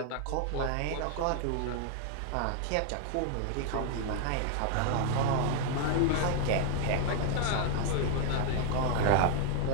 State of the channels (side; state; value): both; different; correlation 0.00